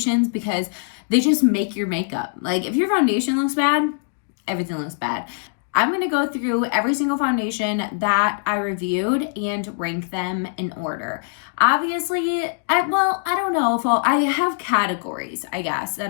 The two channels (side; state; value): right; silent; digital silence